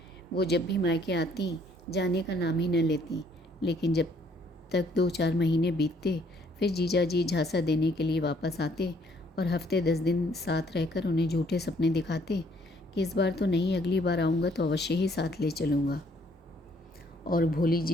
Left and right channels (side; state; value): both; normal; correlation 0.64